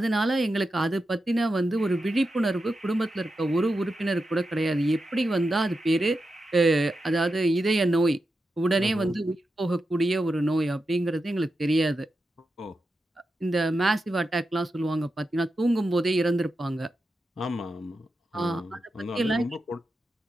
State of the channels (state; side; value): normal; both; correlation 0.89